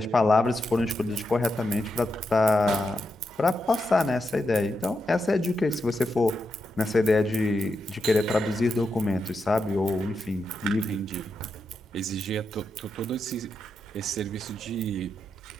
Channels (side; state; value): both; normal; correlation 0.85